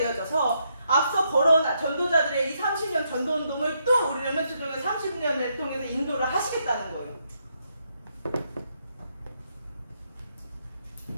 앞서 걸어온 전도자들의 이 30년 전도 운동을 또 우리 렘넌트 중에 30년을 통해서 인도를 하시겠다는 거예요.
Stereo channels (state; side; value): inverted; both; correlation -0.77